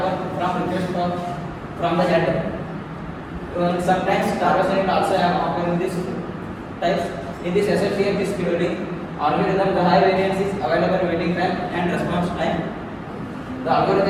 from request from the header. Sometimes starvation also happen in this types. In this SSTF disk scheduling algorithm, the high variance is available waiting time and response time. The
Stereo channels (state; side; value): identical; both; correlation 1.00